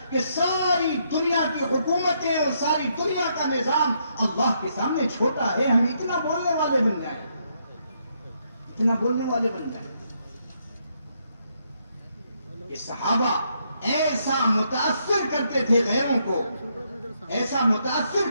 کہ ساری دنیا کی حکومتیں اور ساری دنیا کا نظام اللہ کے سامنے چھوٹا ہے. ہم اتنا بولنے والے بن جائیں, اتنا بولنے والے بن جائیں. یہ صحابہ ایسا متاثر کرتے تھے غیروں کو, ایسا متاثر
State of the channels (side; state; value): both; inverted; correlation -0.76